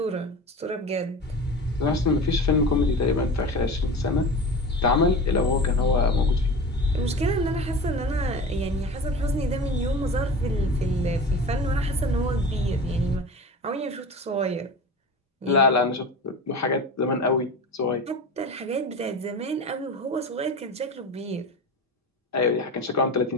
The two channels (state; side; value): normal; both; correlation 0.32